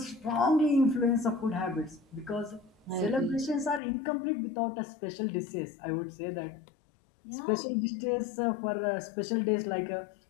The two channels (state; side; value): drops out; right; at 3.8 s